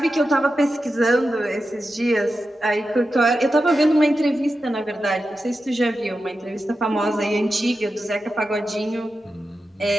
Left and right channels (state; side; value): normal; both; correlation 0.91